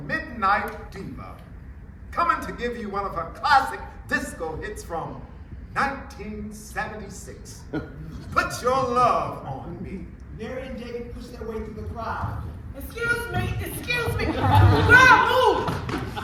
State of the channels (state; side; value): identical; both; correlation 1.00